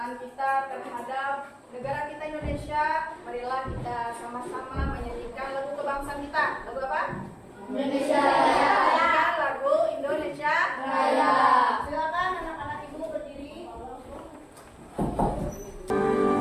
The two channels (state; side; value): identical; both; correlation 1.00